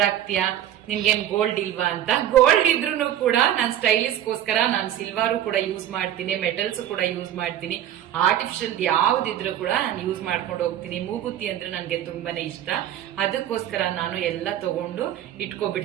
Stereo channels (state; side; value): quieter; left; 11.4 dB